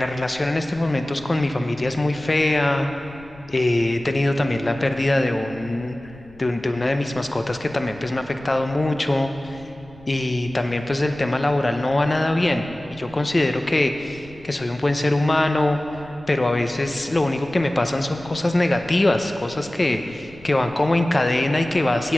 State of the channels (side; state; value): left; noise; rumble, 24 dB below the sound